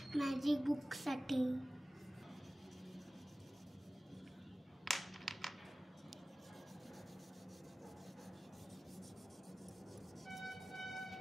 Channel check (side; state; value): both; normal; correlation 0.97